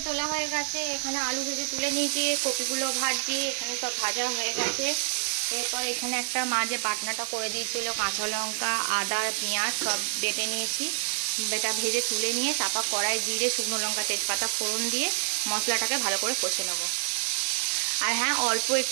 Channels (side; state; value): left; silent; 60 dB below the other